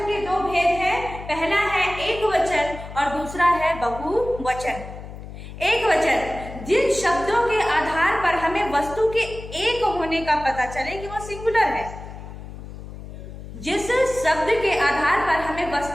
के दो भेद हैं, पहला है एक वचन और दूसरा है बहुवचन। एक वचन जिन शब्दों के आधार पर हमें वस्तु के एक होने का पता चले कि वो सिंगुलर है। जिस शब्द के आधार पर हमें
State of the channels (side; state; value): left; noise; hum, 12 dB below the sound